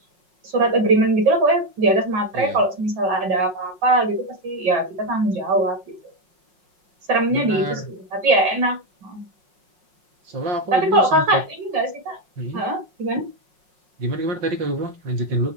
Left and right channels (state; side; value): late; left; 5.5 ms